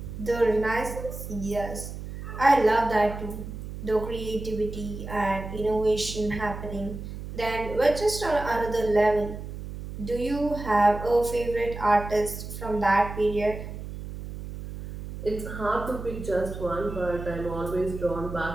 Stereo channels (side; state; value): right; noise; hum, 9 dB below the sound